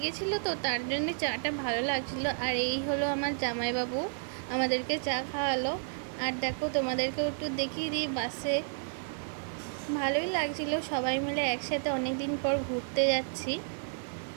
তো তার জন্য চাটা ভালো লাগছিল। আর এই হলো আমার জামাইবাবু, আমাদেরকে চা খাওয়ালো। আর দেখো তোমাদেরকেও একটু দেখিয়ে দিই, বাসে ভালোই লাগছিল, সবাই মিলে একসাথে অনেক দিন পর ঘুরতে যাচ্ছি।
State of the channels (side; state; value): left; silent; digital silence